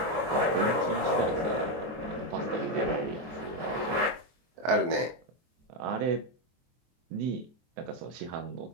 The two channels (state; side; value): late; left; 23 ms